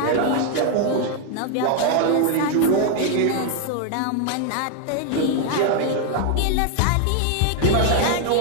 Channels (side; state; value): both; different; correlation 0.00